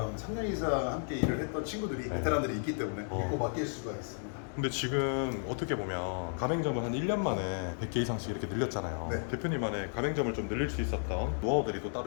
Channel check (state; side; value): silent; right; 55 dB below the other